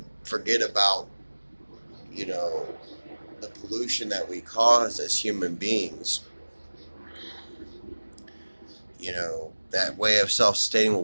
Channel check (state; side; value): inverted; both; correlation -1.00